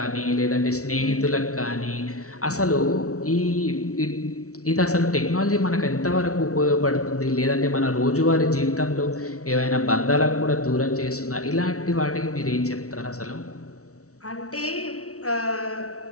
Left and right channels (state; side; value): late; right; 0.65 ms